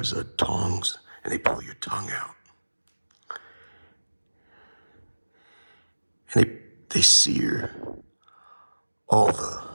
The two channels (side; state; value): both; inverted; correlation -1.00